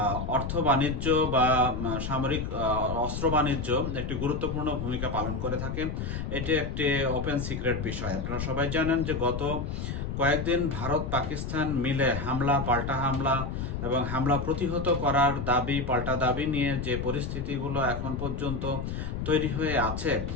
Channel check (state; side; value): noise; left; rumble, 4 dB below the sound